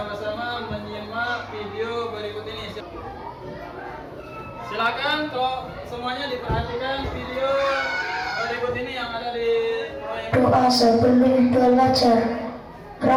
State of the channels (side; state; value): both; identical; correlation 1.00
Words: menyimak video berikut ini. Silakan kalau semuanya diperhatikan video berikut ini yang ada di Doa sebelum belajar.